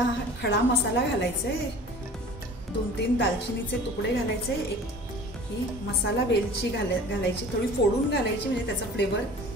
खडा मसाला घालायचा आहे। 2-3 दालचिनीचे तुकडे घालायचे, एक ही मसाला वेलची घालायची, थोडी फोडून घालायची म्हणजे त्याचा फ्लेवर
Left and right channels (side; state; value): both; normal; correlation 0.43